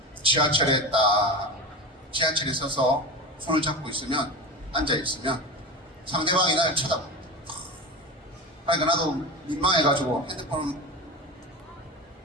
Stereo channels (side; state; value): both; normal; correlation 0.26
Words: 지하철에 서서 손을 잡고 있으면, 앉아있으면 상대방이 나를 쳐다봅니다. 그러니까 나도 민망해가지고